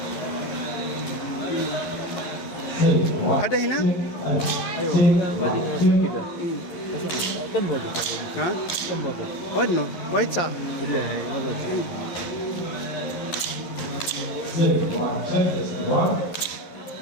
Ada hina? Ha? What no? White sa?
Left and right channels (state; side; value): late; right; 11 ms